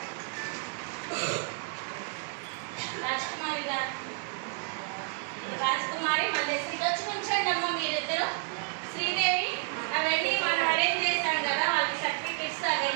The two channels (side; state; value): left; quieter; 38.3 dB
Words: రాజ్కుమారి మల్లేశ్వరి వచ్చి కూర్చోండి అమ్మ మీరిద్దరు. శ్రీదేవి అవన్నీ మనం అరేంజ్ చేశాం కదా, వాళ్ళకి సర్టిఫికెట్స్